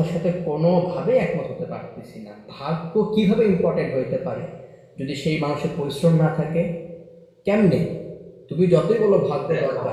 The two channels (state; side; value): identical; both; correlation 1.00